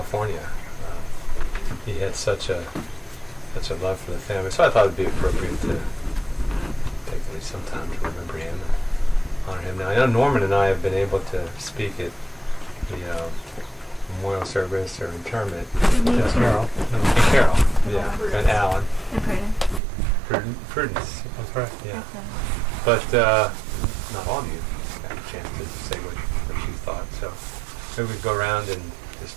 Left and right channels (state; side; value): drops out; left; at 19.8 s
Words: He had such a love for the family, so I thought it'd be appropriate to take at least some time to remember him and honor him. Now, I know Norman and I have been able to speak at the memorial service or interment. Carol. Carol, yeah, and Alan. And Prudence. That's right. Yeah. But not all of you got a chance to say what you thought. So maybe we go around and just,